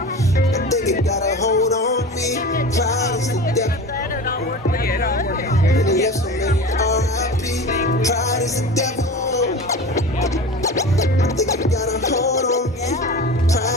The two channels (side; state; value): both; normal; correlation 0.33